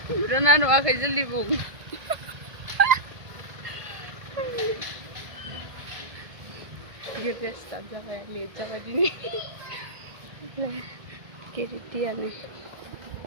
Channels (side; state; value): left; late; 1.5 ms